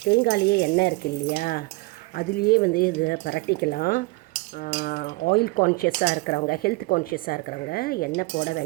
தேங்காயிலேயே எண்ணெய் இருக்குது இல்லையா, அதுலேயே வந்து இதை பரட்டிக்கலாம். ஆயில் கான்ஷியஸாக இருக்கிறவங்க, ஹெல்த் கான்ஷியஸாக இருக்கிறவங்க எண்ணெய் போட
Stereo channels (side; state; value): left; quieter; 24.1 dB